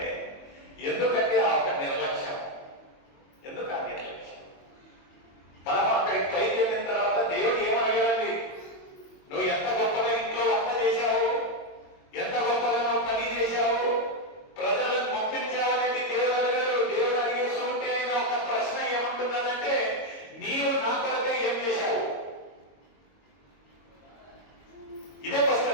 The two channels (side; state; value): right; late; 22 ms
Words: ఎందుకంటే ఆ ఒక నిర్లక్ష్యం. ఎందుకు ఆ నిర్లక్ష్యం? మనం అక్కడికి పైకి వెళ్ళిన తర్వాత దేవుడు ఏమడిగాడండి? నువ్వు ఎంత గొప్పగా ఇంట్లో వంట చేశావు, ఎంత గొప్పగా నువ్వు పని చేశావు, ప్రజలను పంపించావు అనేది దేవుడు అడిగాడు. దేవుడు అడిగేస్తూ ఉంటే ఆయన ఒక ప్రశ్న ఏమంటున్నదంటే, నీవు నా కొరకే ఏం చేశావు? ఇదే